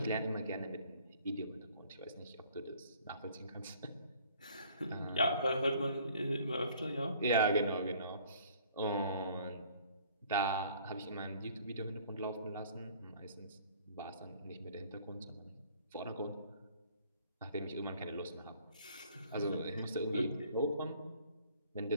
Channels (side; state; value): both; inverted; correlation -0.56